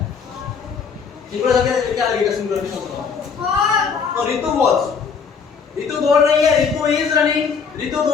सिंगुलर के क्या लगेगा सिंगुलर के साथ? तो रितु वाज, रितु दौड़ रही है, रितु इज रनिंग, रितु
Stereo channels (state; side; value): quieter; right; 6.0 dB